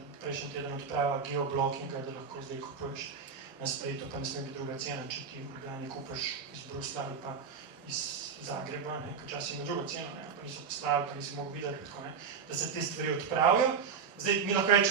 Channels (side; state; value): left; quieter; 6.1 dB